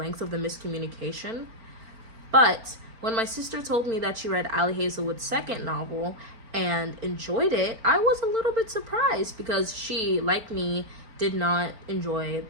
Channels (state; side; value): late; left; 4.4 ms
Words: of the miscommunication. But when my sister told me that she read Ali Hazelwood's second novel and enjoyed it, I was a little bit surprised because she, like me, did not enjoy